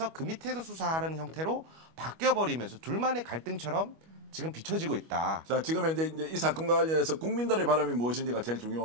그 밑에서 수사하는 형태로 바뀌어버리면서 둘만의 갈등처럼 지금 비춰지고 있다. 자, 지금 이제 이 사건과 관련해서 국민들의 바람이 무엇인지가 제일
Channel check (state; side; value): late; left; 25 ms